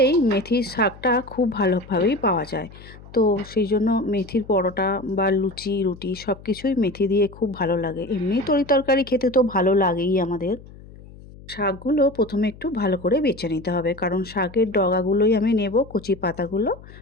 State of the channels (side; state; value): left; noise; hum, 19 dB below the sound